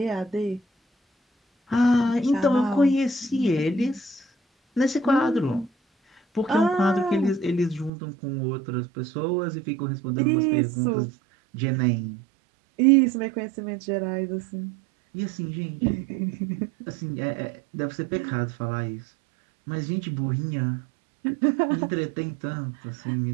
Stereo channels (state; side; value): drops out; left; at 7.9 s